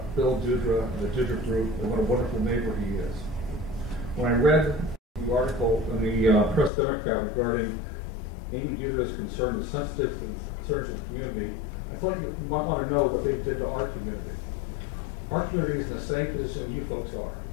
Bill DUTRA and the DUTRA group and what a wonderful neighbor he is. When I read the article in the Press Democrat regarding Amy DUTRA's concern, the sensitive concerns of the community, I thought you might want to know what they did to our community. Our community is in the same position you folks are.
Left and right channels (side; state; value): right; drops out; at 6.7 s